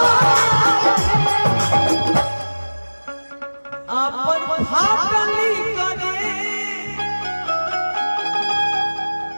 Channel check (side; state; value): both; inverted; correlation -1.00